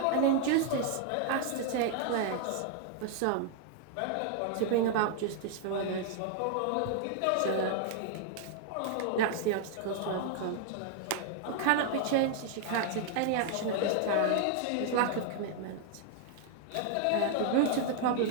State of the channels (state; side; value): different; both; correlation 0.00